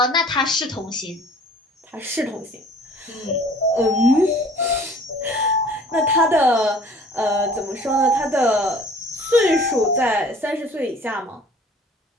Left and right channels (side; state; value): both; normal; correlation 0.50